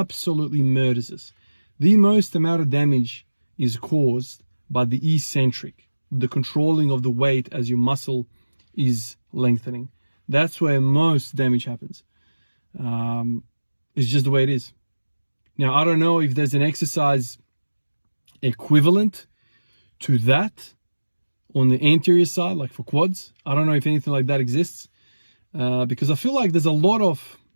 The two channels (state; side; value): inverted; both; correlation -1.00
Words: murders us. The most amount of damage is caused by the eccentric, the controlling of the weight as your muscle is lengthening. That's where most damage happens. It's just the way it is. Now, I don't know if there's an exercise equivalent to that on the anterior side, like for quads. I don't know if anything like that exists, because I feel like there's a lot of,